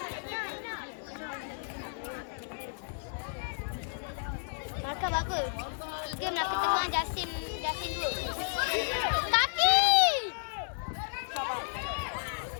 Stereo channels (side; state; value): right; silent; 56 dB below the other